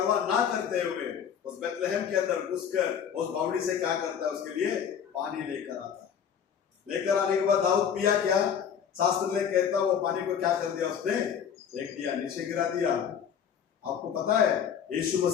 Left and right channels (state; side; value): quieter; right; 8.0 dB